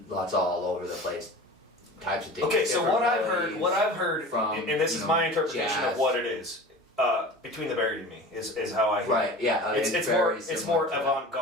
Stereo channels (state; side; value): normal; both; correlation 0.37